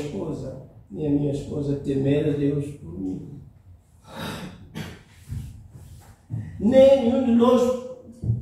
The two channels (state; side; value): identical; both; correlation 1.00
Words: nem a minha esposa temer a Deus por mim. Nenhum de nós